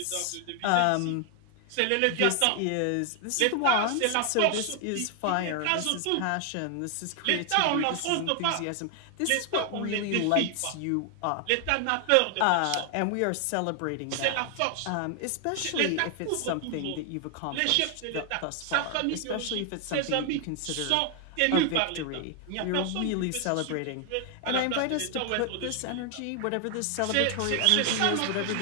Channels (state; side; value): different; both; correlation 0.00